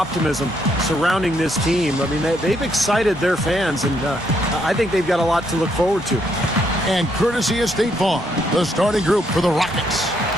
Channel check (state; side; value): normal; both; correlation 0.74